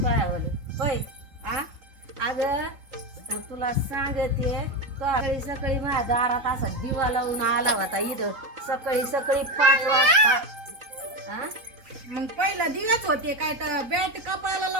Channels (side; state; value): left; late; 3.9 ms